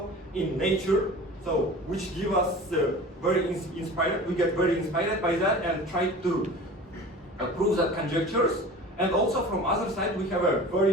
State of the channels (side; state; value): both; normal; correlation 0.39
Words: in Nature. So, which give us very inspired. We get very inspired by that and try to prove that conjectures. And also from other side, we have a